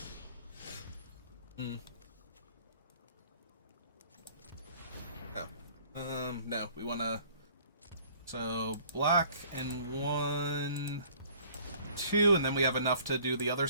No, we want to... So, black and 1, 2, and then we have enough to do the other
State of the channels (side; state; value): both; inverted; correlation -0.54